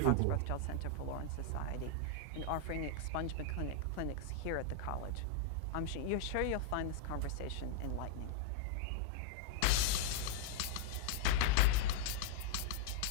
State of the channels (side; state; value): both; different; correlation -0.01